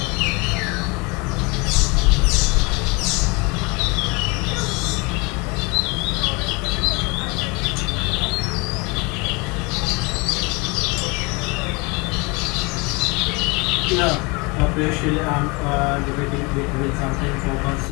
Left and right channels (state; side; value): quieter; right; 27.9 dB